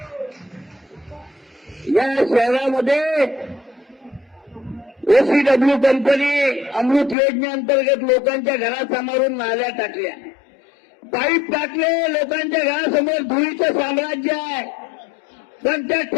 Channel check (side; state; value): right; drops out; at 7.2 s